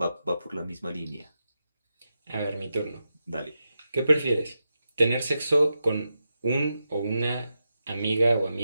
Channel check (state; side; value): inverted; both; correlation -0.88